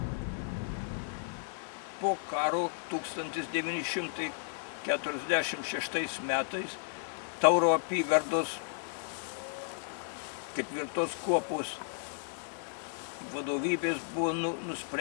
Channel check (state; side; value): silent; right; digital silence